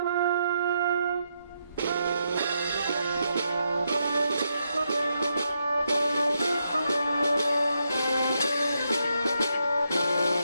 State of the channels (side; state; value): both; inverted; correlation -0.81